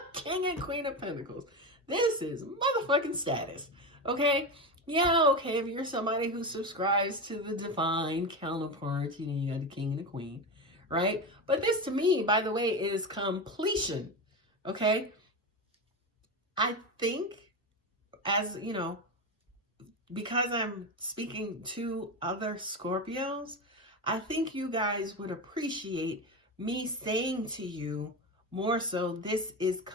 King and Queen of Pentacles. This is motherfucking status. Okay? Yeah, okay, if you're somebody who subscribes to the divine counterpart, you know, you got the king and the queen, right? But this to me, by the way, is completion. Okay? I think, as you know, because I'm speaking to other Scorpios, I think you guys would appreciate me saying to you more so, this is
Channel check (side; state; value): both; normal; correlation 0.19